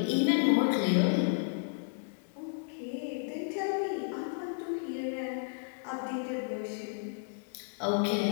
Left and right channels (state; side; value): silent; right; digital silence